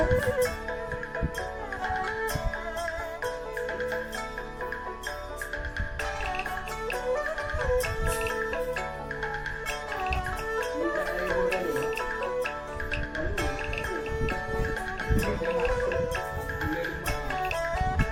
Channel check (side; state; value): both; identical; correlation 1.00